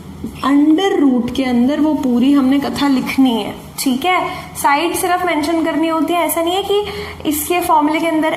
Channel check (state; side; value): identical; both; correlation 1.00